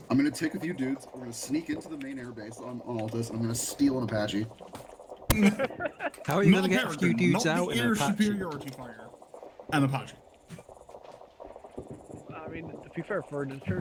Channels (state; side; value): identical; both; correlation 1.00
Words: I'm gonna take a few dudes. We're gonna sneak into the main airbase on Altus, and I'm gonna steal an Apache. How are you gonna get a few dudes out in an an air Apache? superiority fire? An Apache. I mean, to be fair, for an